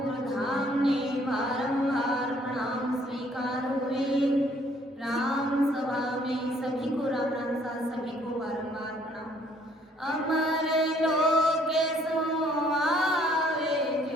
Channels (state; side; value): normal; both; correlation 0.63